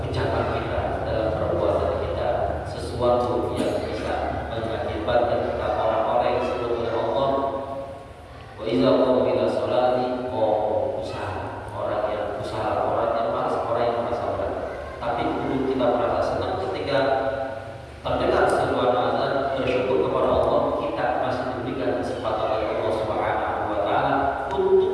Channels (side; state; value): both; identical; correlation 1.00